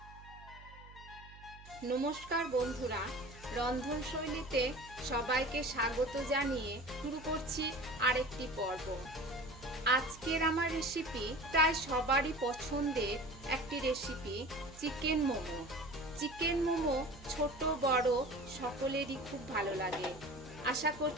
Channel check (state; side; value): noise; right; hum, 19 dB below the sound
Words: বন্ধুরা, রন্ধনশৈলীতে সবাইকে স্বাগত জানিয়ে শুরু করছি আরেকটি পর্ব। আজকের আমার রেসিপি প্রায় সবারই পছন্দের একটি recipe, chicken momo. Chicken momo ছোট বড় সকলেরই খুব ভালো লাগে। আশা